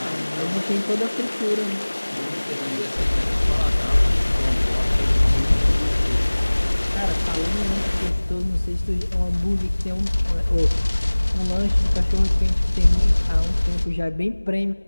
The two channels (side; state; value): both; inverted; correlation -1.00